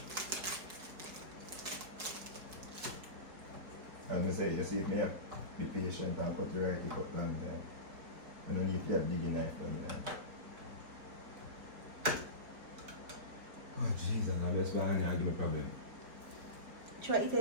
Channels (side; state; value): left; late; 4.5 ms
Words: As I say, you see if me have be patient and cut the right, cut long time. I don't need to have big knife for me. Oh Jesus, I just behind here give me problem. Try to